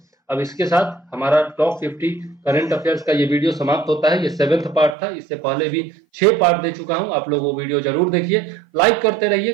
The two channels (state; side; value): drops out; left; at 5.0 s